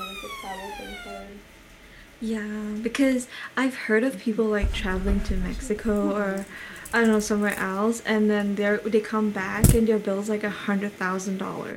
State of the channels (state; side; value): identical; both; correlation 1.00